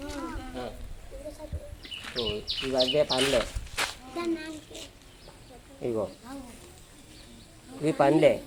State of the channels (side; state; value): both; identical; correlation 1.00